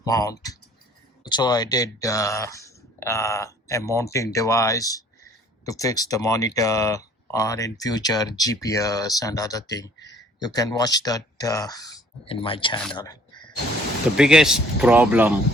mount. So I did a mounting device to fix the monitor or in future GPS and other thing. You can watch that in my channel. The biggest problem,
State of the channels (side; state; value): both; normal; correlation 0.56